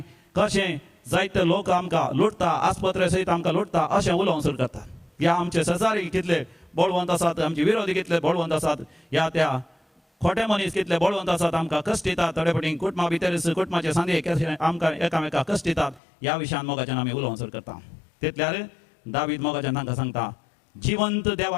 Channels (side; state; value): right; drops out; at 16.0 s